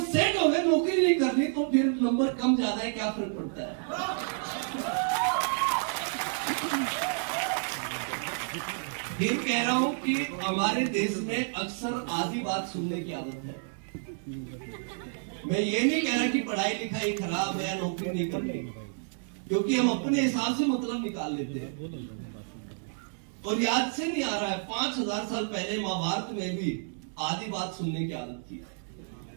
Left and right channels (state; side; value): silent; left; digital silence